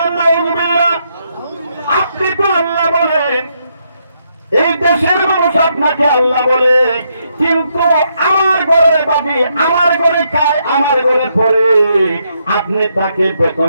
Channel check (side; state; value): both; inverted; correlation -0.77